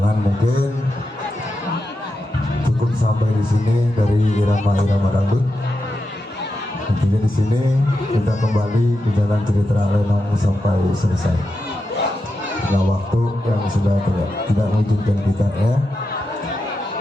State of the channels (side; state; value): both; normal; correlation 0.88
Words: mungkin cukup sampai di sini dari irama-irama dangdut. Tentunya di sini kita kembali ke jalan cerita Lenong sampai selesai. Nah, waktu yang sudah tidak mengizinkan kita ya.